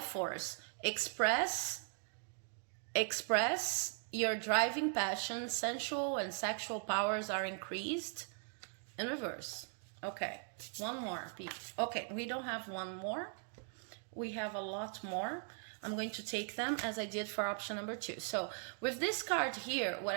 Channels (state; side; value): silent; left; 51 dB below the other